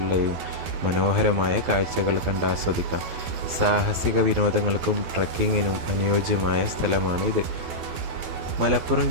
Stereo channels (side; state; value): left; late; 12 ms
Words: മനോഹരമായ കാഴ്ചകൾ കണ്ടാസ്വദിക്കാം. സാഹസിക വിനോദങ്ങൾക്കും ട്രക്കിങ്ങിനും അനുയോജ്യമായ സ്ഥലമാണിത്. മലപ്പുറം